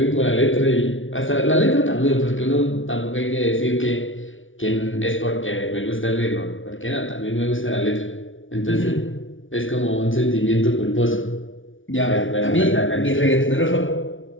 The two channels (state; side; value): late; right; 0.57 ms